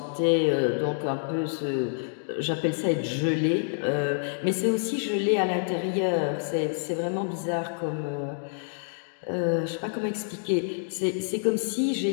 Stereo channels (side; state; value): right; silent; digital silence